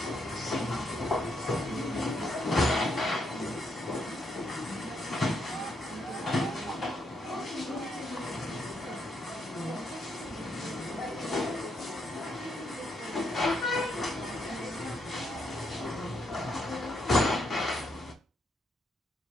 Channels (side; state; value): both; normal; correlation 0.77